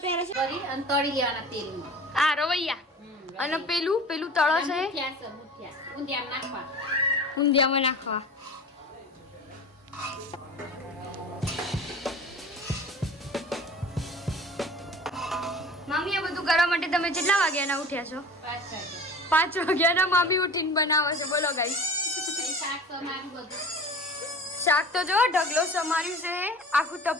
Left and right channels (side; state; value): both; normal; correlation 0.39